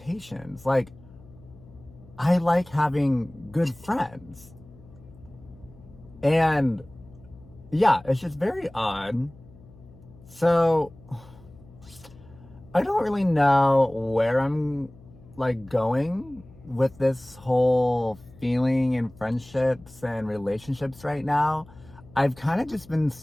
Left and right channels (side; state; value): left; noise; hum, 23 dB below the sound